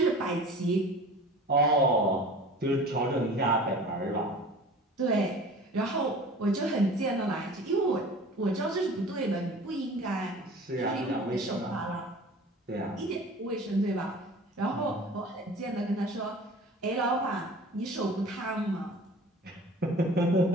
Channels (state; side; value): normal; both; correlation 0.41